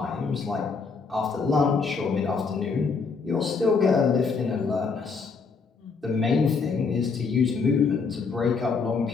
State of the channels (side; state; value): right; quieter; 4.9 dB